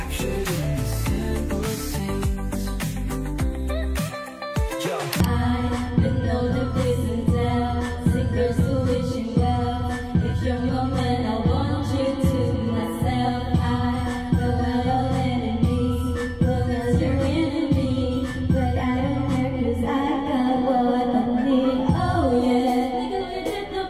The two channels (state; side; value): identical; both; correlation 1.00